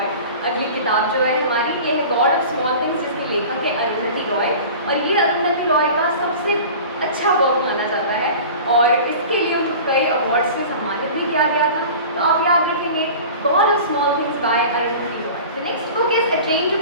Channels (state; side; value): inverted; both; correlation -0.38